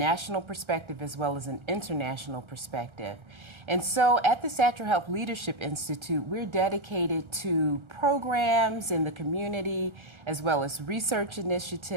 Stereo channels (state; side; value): late; left; 1.3 ms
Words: perspective as well as an international perspective. And so at the Satcher Health Leadership Institute, we're dedicated to programs in the community as well as research